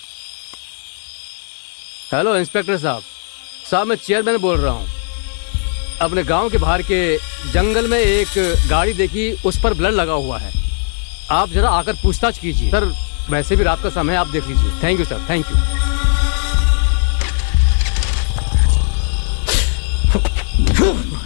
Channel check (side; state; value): right; silent; 68 dB below the other